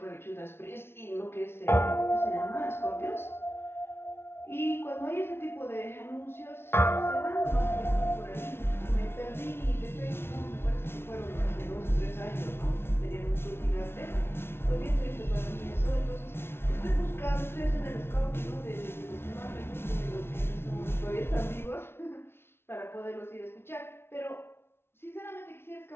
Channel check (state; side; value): late; right; 0.12 ms